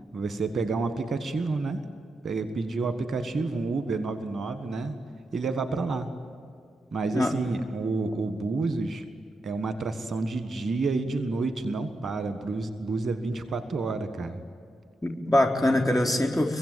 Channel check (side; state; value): both; normal; correlation 0.86